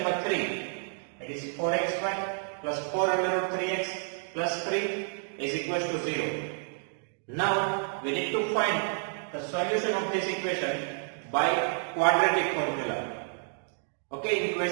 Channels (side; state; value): left; silent; 55 dB below the other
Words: 3, it is 4xy plus 4 under root 3x plus 3 is equal to 0. Now we need to find the solution of this equation by quadratic formula. Okay, in